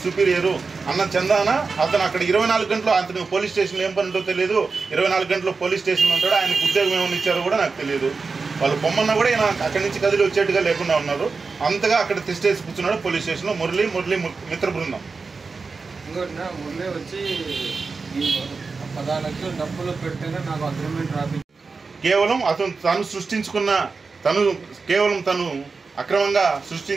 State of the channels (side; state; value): left; quieter; 4.4 dB